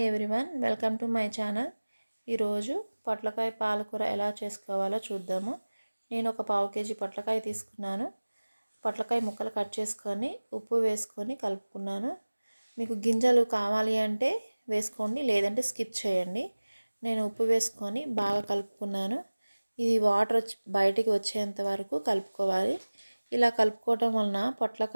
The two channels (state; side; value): inverted; both; correlation -1.00